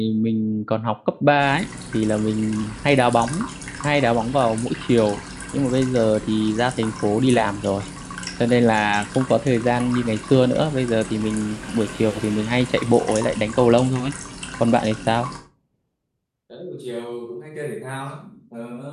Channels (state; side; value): identical; both; correlation 1.00